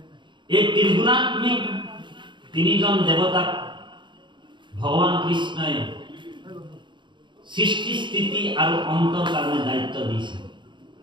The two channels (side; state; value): left; late; 0.23 ms